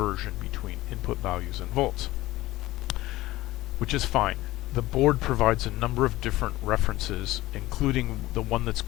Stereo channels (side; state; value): right; quieter; 17.4 dB